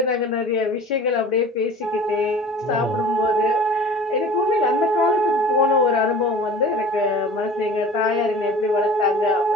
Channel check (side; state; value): both; normal; correlation 0.42